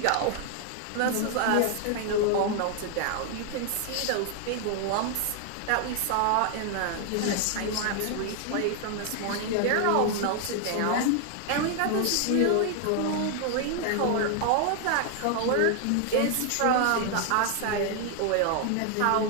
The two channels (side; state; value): both; different; correlation 0.00